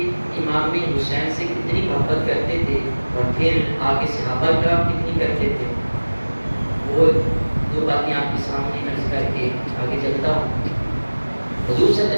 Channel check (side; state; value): both; inverted; correlation -1.00